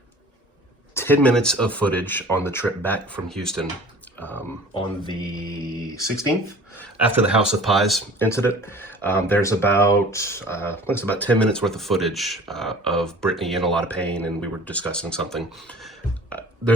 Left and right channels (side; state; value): both; normal; correlation 0.45